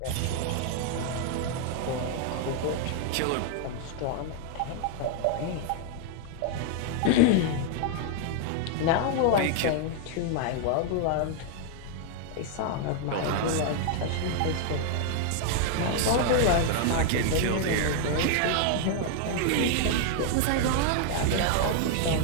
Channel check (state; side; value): different; both; correlation 0.00